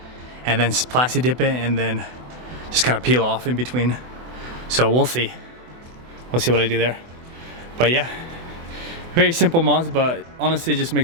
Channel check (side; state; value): left; late; 24 ms